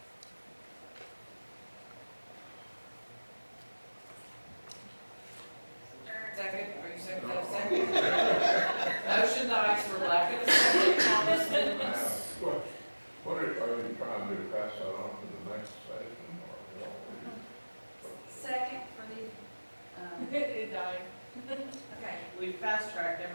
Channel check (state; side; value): inverted; both; correlation -1.00